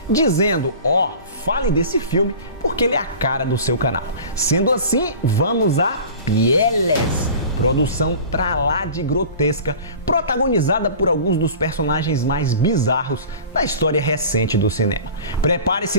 dizendo, fale desse filme porque ele é a cara do seu canal. Sendo assim, vamos a Pieles, produção pra lá de grotesca, protagonizada por alguns dos personagens mais bizarros da história recente do cinema.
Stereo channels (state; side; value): inverted; both; correlation -0.39